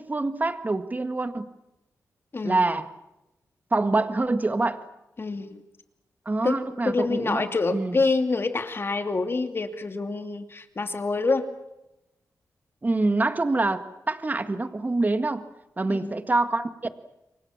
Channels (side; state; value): both; normal; correlation 0.87